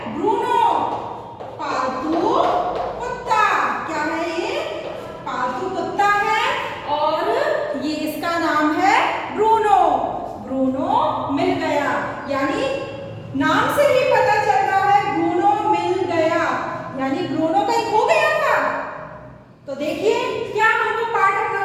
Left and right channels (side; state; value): both; identical; correlation 1.00